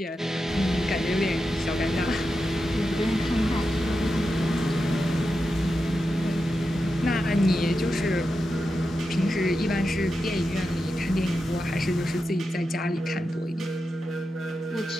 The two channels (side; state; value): both; normal; correlation 0.89